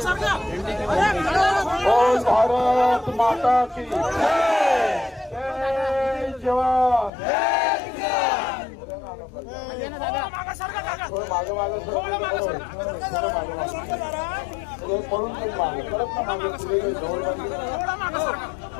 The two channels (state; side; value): drops out; right; at 7.1 s